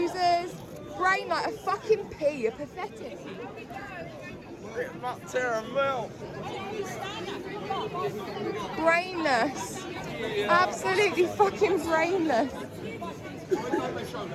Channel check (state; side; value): identical; both; correlation 1.00